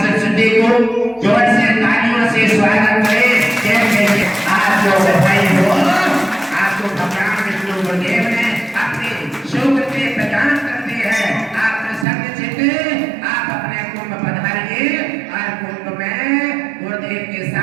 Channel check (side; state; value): left; drops out; at 12.1 s